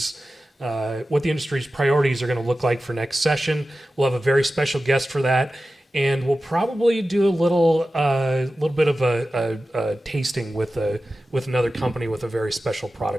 priorities are going to look like for next session. We'll have a very special guest for that, and we'll probably do a little bit of a tasting with another company with a very special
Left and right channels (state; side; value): normal; both; correlation 0.94